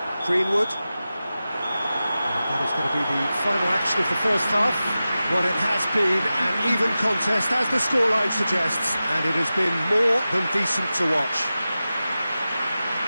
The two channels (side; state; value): both; inverted; correlation -0.94